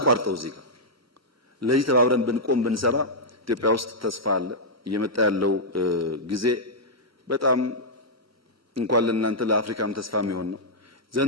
እዚህ ጋር ለዚህ ተባብረን ብንቆም ብንሰራ ኢትዮጵያ ውስጥ ተስፋ አለ። እየመጣ ያለው ጊዜ በጣም እንኳን ለእናንተ ለአፍሪካም ተስፋ የሚሆን ነው።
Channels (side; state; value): both; normal; correlation -0.08